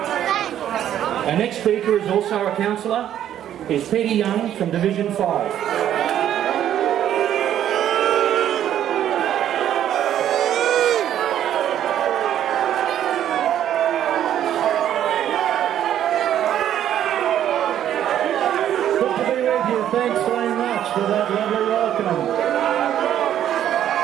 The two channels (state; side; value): quieter; left; 10.8 dB